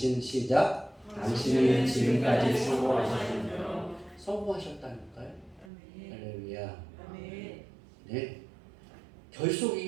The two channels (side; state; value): left; drops out; at 5.7 s